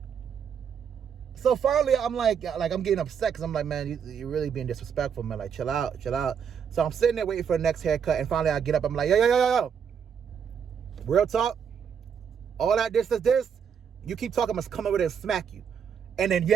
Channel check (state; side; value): quieter; left; 7.4 dB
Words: So finally, I'm like I'm getting upset because I'm like, man, you're really being disrespectful, man. Like, chill out. So I'm sitting there waiting for the next haircut, and finally I get up. I'm like, yo. Real talk. All that this. You keep talking, I must come over there and smack you. And then you